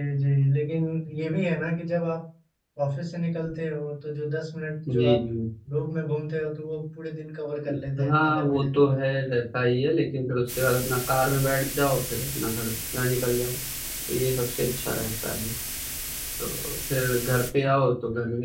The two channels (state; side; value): identical; both; correlation 1.00